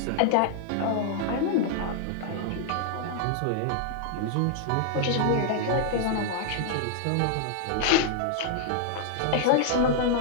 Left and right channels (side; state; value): both; different; correlation -0.01